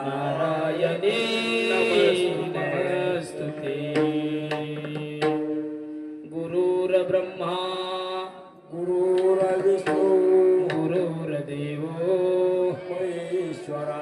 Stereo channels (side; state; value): both; identical; correlation 1.00